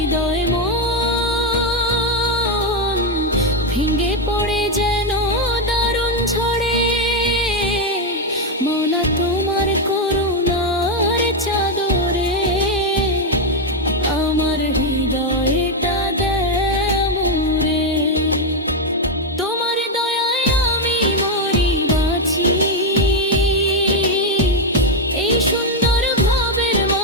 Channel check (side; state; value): both; normal; correlation 0.04